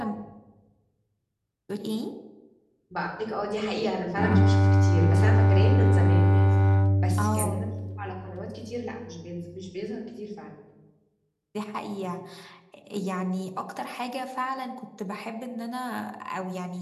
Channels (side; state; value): both; identical; correlation 1.00